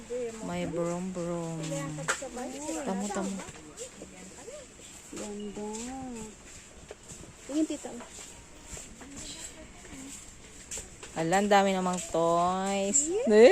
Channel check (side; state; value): both; identical; correlation 1.00